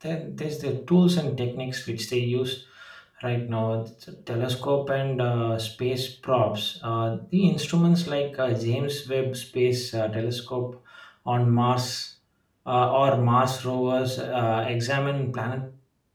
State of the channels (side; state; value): both; identical; correlation 1.00